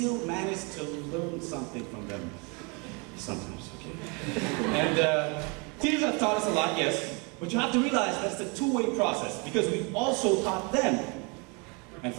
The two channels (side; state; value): left; quieter; 31.7 dB